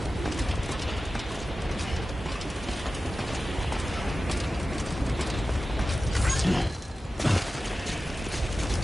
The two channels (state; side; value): normal; both; correlation 0.94